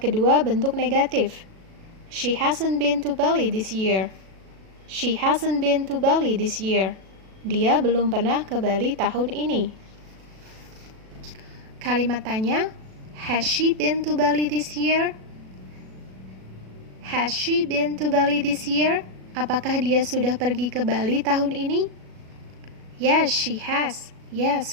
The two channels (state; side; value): late; left; 37 ms